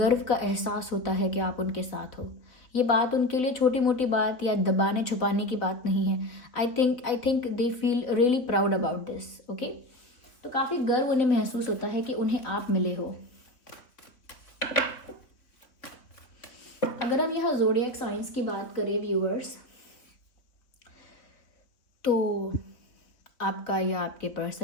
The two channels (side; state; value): right; late; 3.3 ms